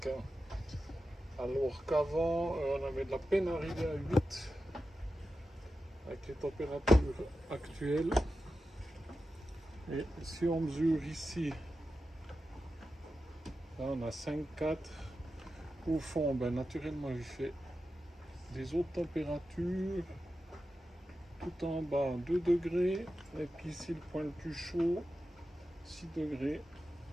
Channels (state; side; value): normal; both; correlation 0.91